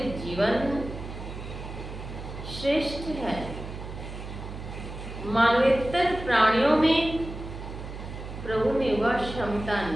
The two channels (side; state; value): right; noise; hum, 10 dB below the sound